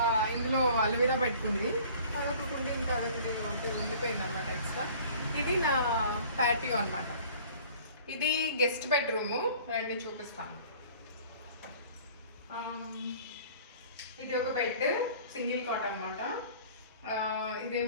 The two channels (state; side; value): inverted; both; correlation -0.49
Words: ఇందులో అలోవీరా పెట్టుకుంది. అదొకటి ఉండి ఇంకా అదొకటి ఉండిపోయింది అనమాట ఎక్స్ట్రా. ఇది నా ప్యాటియో అనమాట. ఇది గెస్ట్ బెడ్రూము, రండి చూపిస్తాను. ఇది ఒక బెడ్, సింగిల్ కాట్ అనమాట.